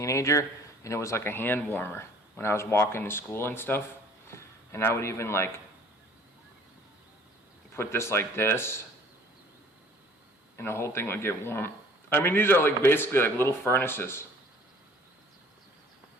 and it was like a hand warmer when I was walking to school and stuff. And I would even like put this like this, and the whole thing would get warm. I mean, these are like basically like little furnaces.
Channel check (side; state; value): both; normal; correlation 0.53